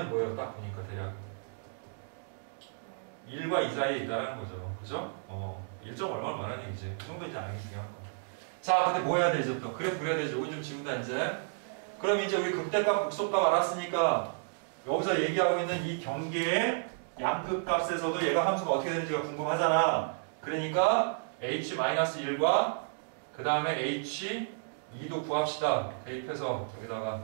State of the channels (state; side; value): silent; left; digital silence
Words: 뭐예요? 딱 보니까 대략 1과 2 사이에 있다는 거죠. 그죠? 1점 얼마는 얘기지. 그 정도 이제 아는 게 중요한 거. 자, 근데 뭐 해야 되죠? 또 그래프 그려야 되죠. 여기 좀 지운다 이제. 그럼 이제 우리 극대값, 극소값 알았으니까 여기서 얘기하고 있는 이 경계의 양극값에서도 얘가 함수가 어떻게 되는지가 궁금하잖아. 그러니까 h-1과 그 다음에 h2도 구합시다. 대입해서 여기다가